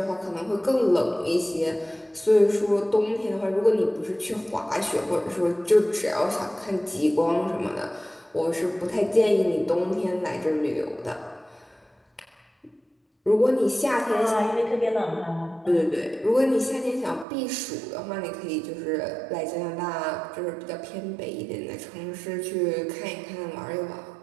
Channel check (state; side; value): drops out; left; at 17.2 s